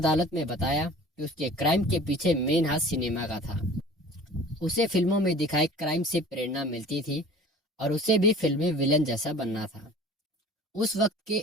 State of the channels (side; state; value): both; normal; correlation 0.44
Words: में बताया कि उसके क्राइम के पीछे मेन हाथ सिनेमा का था। उसे फिल्मों में दिखाए क्राइम से प्रेरणा मिलती थी और उसे भी फिल्मी विलन जैसा बनना था। उस वक्त